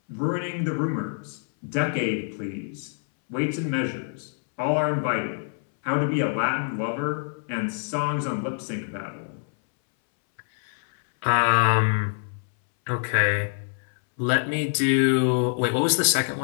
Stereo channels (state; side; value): silent; right; 61 dB below the other